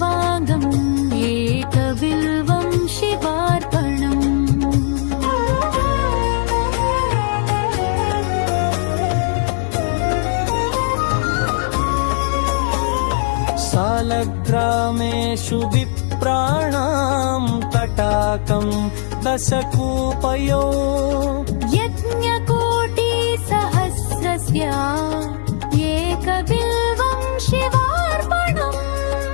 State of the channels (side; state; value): right; silent; digital silence